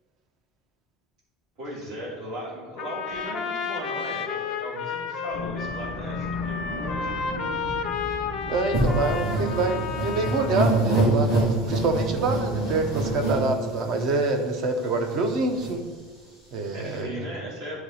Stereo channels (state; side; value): normal; both; correlation 0.33